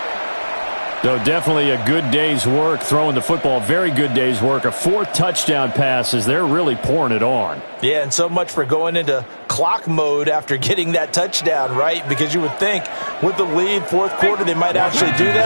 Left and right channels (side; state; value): both; inverted; correlation -1.00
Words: So definitely a good day's work throwing the football. Very good day's work. A 4th touchdown pass as they're really pouring it on. Yeah, and so much for going into clock mode after getting that touchdown, right? Because you would think with the lead, fourth quarter, they might actually do